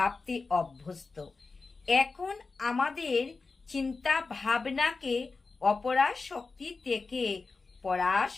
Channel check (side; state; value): right; quieter; 4.1 dB